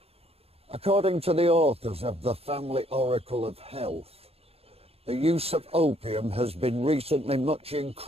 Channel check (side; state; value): left; late; 0.29 ms